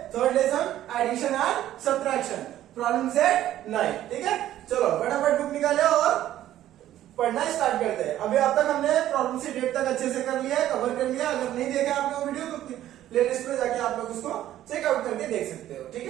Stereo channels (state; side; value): quieter; left; 12.8 dB